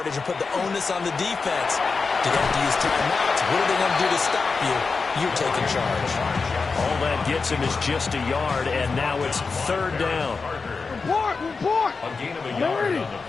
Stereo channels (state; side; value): quieter; right; 4.6 dB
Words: and put the onus on the defense. Do they have to use timeouts? What are they going to do to stop you? You're taking charge. All that gets him is just a yard, and now it's 3rd down. Report! A gain of a yard on the